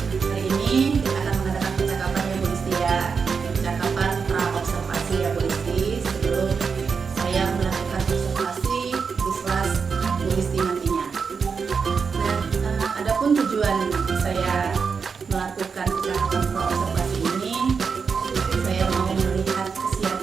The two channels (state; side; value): quieter; left; 5.6 dB